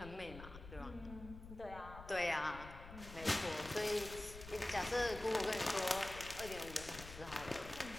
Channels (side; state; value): left; noise; rumble, 13 dB below the sound